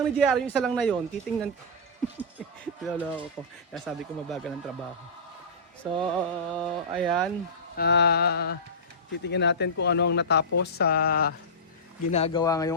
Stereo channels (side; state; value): both; normal; correlation -0.17